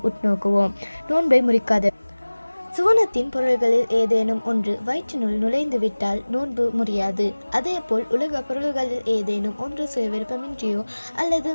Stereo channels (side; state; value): both; inverted; correlation -1.00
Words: உட்நோக்குவோம். நோன்பை முறிக்காத சுவனத்தின் பொருள்களில் ஏதேனும் ஒன்று வயிற்றினுள் நுழைந்துவிட்டால் நோன்பு முறியாது. அதேபோல் உலக பொருள்களில் ஏதேனும் ஒன்று சுயவிருப்பமின்றியோ அல்லது